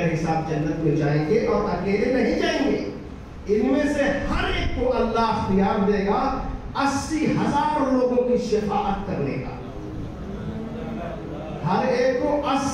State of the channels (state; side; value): identical; both; correlation 1.00